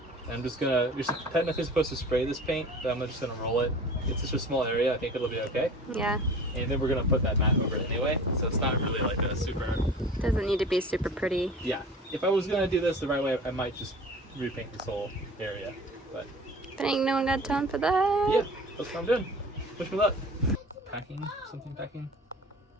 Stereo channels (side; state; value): both; normal; correlation 0.41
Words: And I'm just gonna, you're technically supposed to spray this paint, but I'm just gonna roll it. It's just a small area, I think it'll be okay. Yeah, And then we're gonna put that mat over it anyway, so it's not really like a super, doesn't need to be super pretty. yeah. If I was gonna do this the right way, I might just repaint this whole area, but But ain't no one got time for that. yeah, that's what I'm doing. Wish me luck. Packing, something packing.